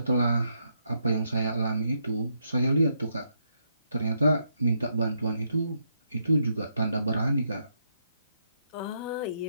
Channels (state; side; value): inverted; both; correlation -0.78